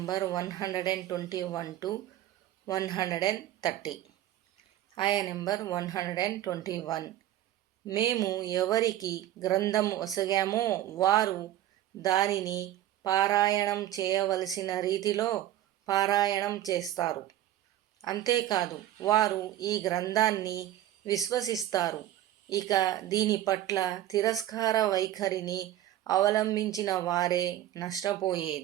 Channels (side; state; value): left; quieter; 13.1 dB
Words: 121 to 130. ఆయా నెంబర్ 121. మేము ఎవరికి గ్రంథం ఒసగామో వారు దానిని పారాయణం చేయవలసిన రీతిలో పారాయణం చేస్తారు. అంతేకాదు వారు ఈ గ్రంథాన్ని విశ్వసిస్తారు. ఇక దీని పట్ల తిరస్కార వైఖరిని అవలంబించిన వారే